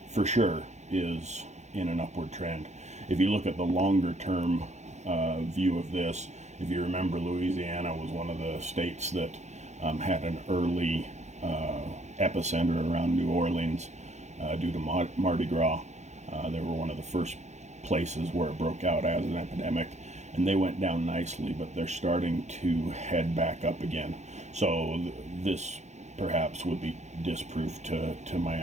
for sure is in an upward trend. If you look at the longer term view of this, if you remember, Louisiana was one of the states that had an early epicenter around New Orleans due to Mardi Gras. They were one of the first places where it broke out as an epidemic, and they went down nicely, but they're starting to head back up again. So this perhaps would be disproof to my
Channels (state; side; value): late; left; 0.33 ms